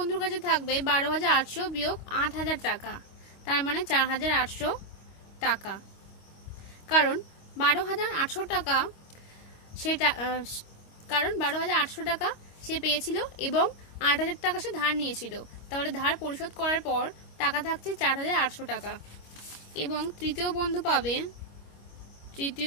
কাছে থাকবে 12,800 বিয়োগ 8,000 টাকা, তার মানে 4,800 টাকা। কারণ 12,800 টাকা সে পেয়েছিল এবং 8,000 টাকা সে ধার নিয়েছিল। তাহলে ধার পরিশোধ করার পর টাকা থাকছে 4,800 টাকা। এবং তৃতীয়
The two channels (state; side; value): late; right; 25 ms